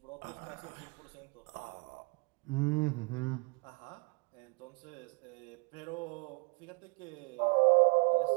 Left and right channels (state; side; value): quieter; left; 30.5 dB